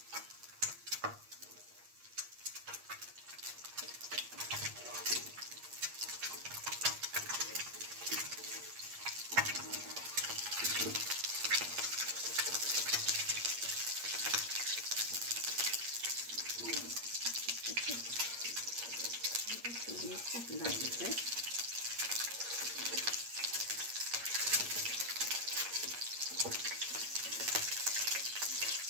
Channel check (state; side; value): late; left; 8.5 ms